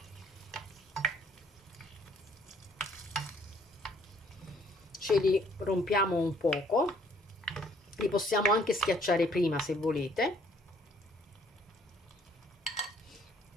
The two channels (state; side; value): normal; both; correlation 0.62